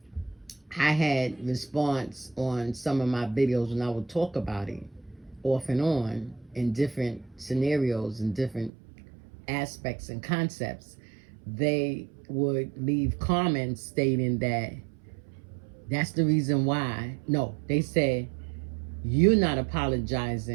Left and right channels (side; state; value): left; drops out; at 8.7 s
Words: I had response on some of my videos when I would talk about it off and on in different scenarios and different aspects and concepts. They would leave comments stating that that's the reason why. No, they said, you're not